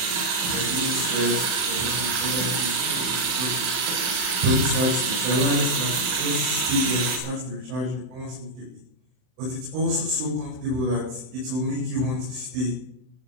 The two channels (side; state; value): left; late; 39 ms